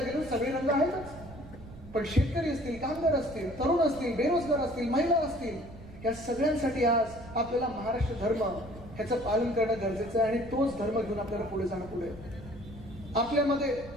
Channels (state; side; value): noise; right; rumble, 16 dB below the sound